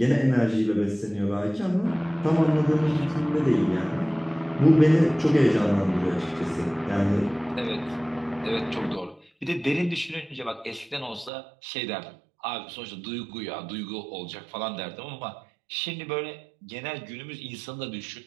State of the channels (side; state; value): left; drops out; at 11.3 s